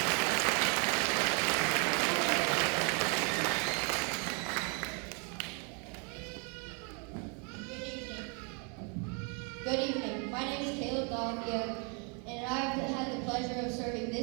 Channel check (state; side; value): quieter; left; 36.5 dB